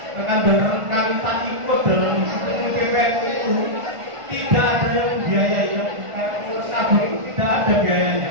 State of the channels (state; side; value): late; left; 1.5 ms